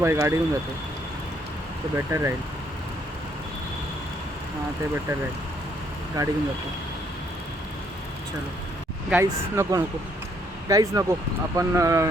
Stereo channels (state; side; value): normal; both; correlation 0.68